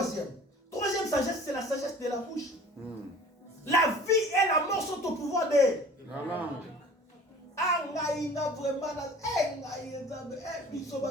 sagesse, c'est la sagesse de la bouche. La vie et la mort sont au pouvoir de la langue. La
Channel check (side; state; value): both; normal; correlation 0.45